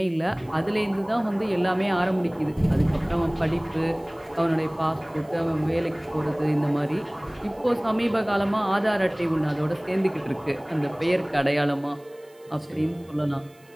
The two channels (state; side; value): noise; right; hiss, 30 dB below the sound